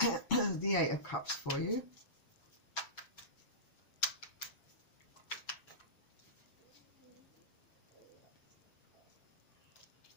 the Eight of Cups for you.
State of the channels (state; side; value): late; right; 7.4 ms